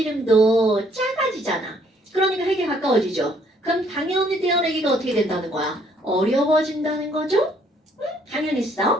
작아지잖아. 그러니까 핵에 가까워지죠. 그럼 당연히 떼어내기가 어떻게 된다는 거야? 어려워진다는 거죠?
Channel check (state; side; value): normal; both; correlation 0.65